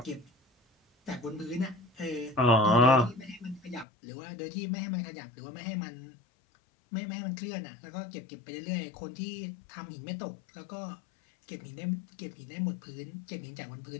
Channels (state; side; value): drops out; right; at 3.9 s